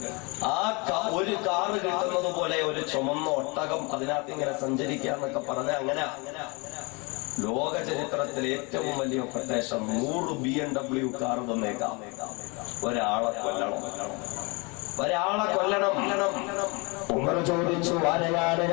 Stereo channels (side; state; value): right; quieter; 29.3 dB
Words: ആ ഒരു കാറ് കിട്ടുന്നത് പോലെ ഒരു ചുമന്ന ഒട്ടകം അതിനകത്ത് ഇങ്ങനെ സഞ്ചരിക്കാന്നൊക്കെ പറഞ്ഞ അങ്ങനെ ലോക ചരിത്രത്തിലെ ഏറ്റവും വലിയ കൊട്ടേഷൻ 100 BMW കാർ തന്നേക്കാം. ഒരാളെ കൊല്ലണം. ഉമർ ചോദിച്ചു, ആരെയാണ്